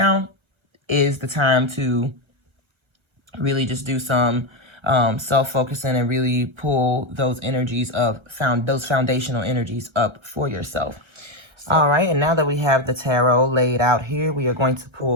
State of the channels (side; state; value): left; late; 1.3 ms